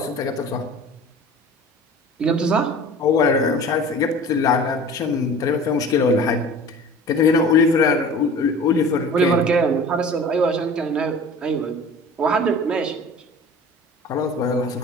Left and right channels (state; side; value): normal; both; correlation 0.42